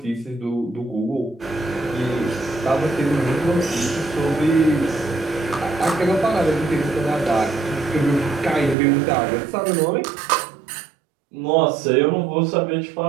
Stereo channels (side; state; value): left; drops out; at 8.8 s